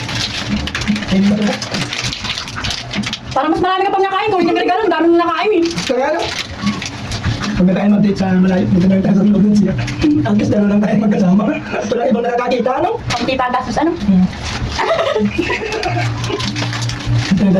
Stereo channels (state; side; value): identical; both; correlation 1.00